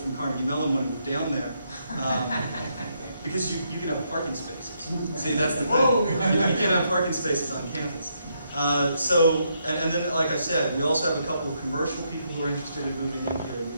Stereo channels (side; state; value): both; inverted; correlation -0.77